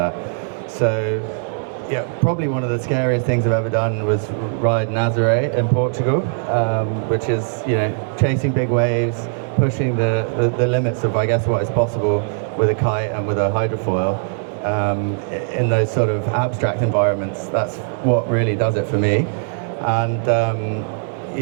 So, yeah, probably one of the scariest things I've ever done was ride Nazaré in Portugal, which is, chasing big waves, pushing the limits of, I guess, what is possible with a kite and with a hydrofoil. In those sort of abstract environments, that's what really does it for me. And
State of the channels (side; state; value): left; silent; digital silence